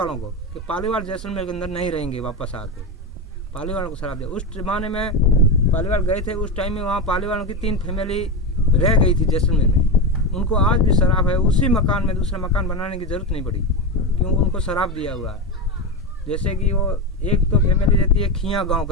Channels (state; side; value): normal; both; correlation 0.16